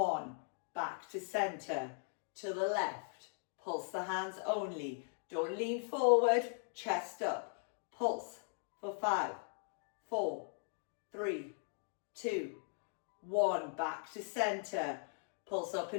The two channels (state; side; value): silent; right; 52 dB below the other